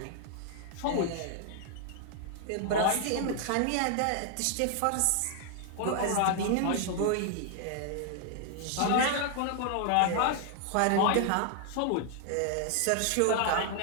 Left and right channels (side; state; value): both; different; correlation 0.00